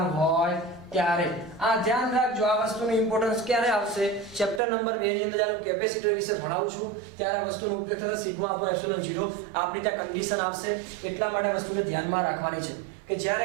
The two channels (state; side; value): drops out; left; at 4.6 s